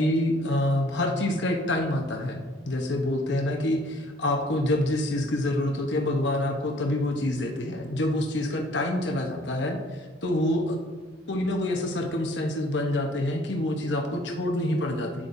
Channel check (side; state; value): both; normal; correlation 0.58